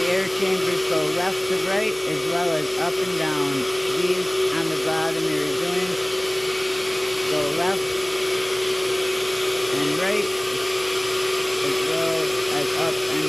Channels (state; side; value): noise; left; hum, 26 dB below the sound